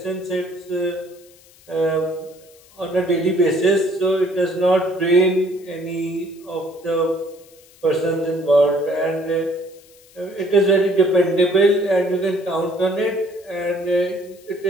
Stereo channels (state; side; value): noise; left; hiss, 27 dB below the sound